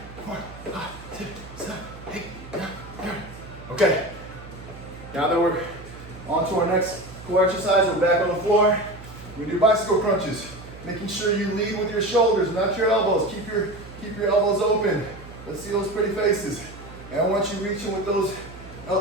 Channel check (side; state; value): right; noise; hum, 16 dB below the sound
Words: 4, 5, 6, 7, 8, 9, 10. Okay, now that we're on to our next core exercise, we're back on the floor. We do bicycle crunches, making sure you lead with your shoulders, not your elbows. Keep your elbows open. Let's see those pretty faces. And I want you reaching with those